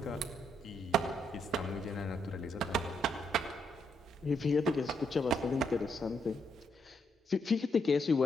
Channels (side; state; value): both; normal; correlation 0.77